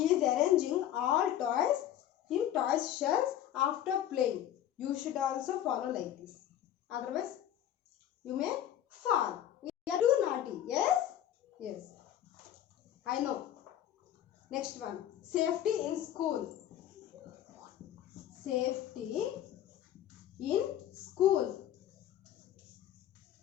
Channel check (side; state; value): right; quieter; 11.5 dB